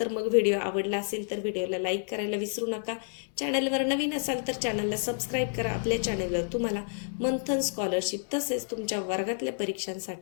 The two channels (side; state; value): right; silent; digital silence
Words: मग व्हिडिओ आवडला असेल तर व्हिडिओला लाईक करायला विसरू नका. चॅनलवर नवीन असाल तर चॅनलला सबस्क्राईब करा. आपल्या चॅनलवर तुम्हाला मंथन स्कॉलरशिप तसेच तुमच्या वर्गातल्या